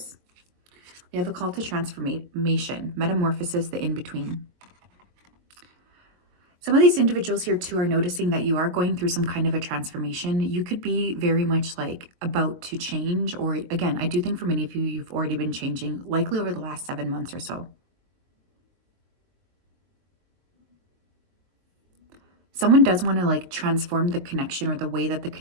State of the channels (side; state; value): left; late; 22 ms